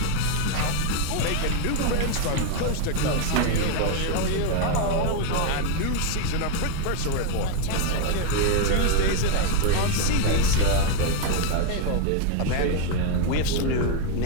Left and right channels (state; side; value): different; both; correlation 0.00